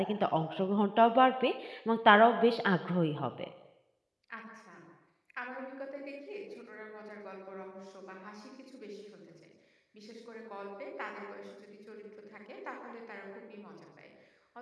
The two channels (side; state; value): both; identical; correlation 1.00